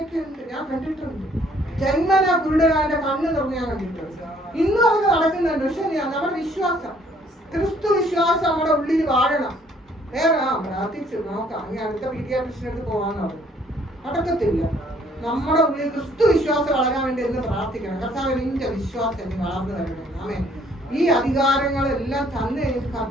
ഉണ്ട്, ഞാൻ കണ്ടിട്ടുണ്ട്. ജന്മന കുരുടനാന്റെ കണ്ണ് തുറന്ന് ഞാൻ കണ്ടിട്ടുണ്ട്. ഇന്നും അതൊക്കെ നടക്കുന്നുണ്ട്. പക്ഷെ നമ്മുടെ വിശ്വാസം, ക്രിസ്തു വിശ്വാസം നമ്മുടെ ഉള്ളിൽ വാഴണം. വേറെ പ്രാർത്ഥിച്ചു നോക്കാം, ഇനി അടുത്ത പീഡിയാട്രിഷ്യനടുത്ത് പോകാന്ന് പറഞ്ഞു, നടക്കത്തില്ല. നമ്മുടെ ഉള്ളിൽ ക്രിസ്തു വിശ്വാസം വളരാൻ വേണ്ടി എന്ന് പ്രാർത്ഥിക്കണം. കർത്താവ് നിന്റെ വിശ്വാസം നീ വളർന്നു വരണേ. ആമേൻ. ഈ അധികാരങ്ങളെല്ലാം തന്നു കഴിഞ്ഞിട്ട്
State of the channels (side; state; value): both; normal; correlation 0.62